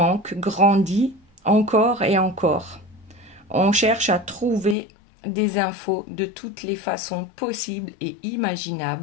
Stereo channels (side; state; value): right; drops out; at 4.8 s